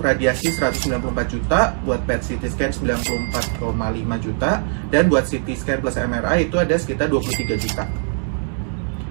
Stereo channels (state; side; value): silent; left; 57 dB below the other